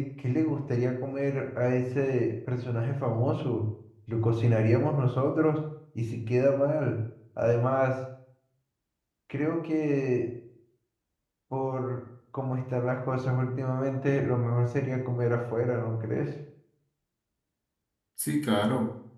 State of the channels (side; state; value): both; identical; correlation 1.00